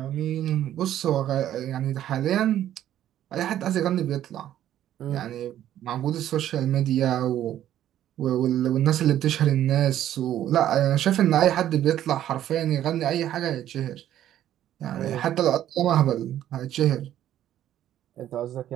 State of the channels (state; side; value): quieter; left; 11.8 dB